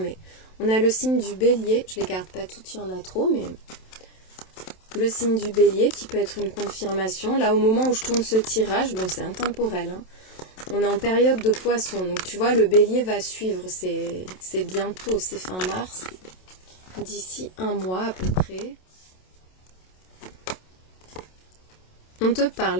On a le signe du Bélier, je ne les garde pas toutes, il y en a trop, mais le signe du Bélier qui peut être une confirmation. Là, au moment où je tourne ce tirage, bon, c'est intemporel, hein. On est en période de Poisson, donc tu vois, le Bélier va suivre, c'est bientôt, c'est fin mars, d'ici un mois à peu près. On te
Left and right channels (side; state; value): right; late; 27 ms